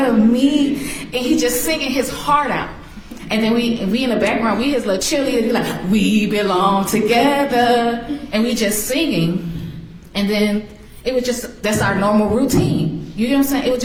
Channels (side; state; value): both; identical; correlation 1.00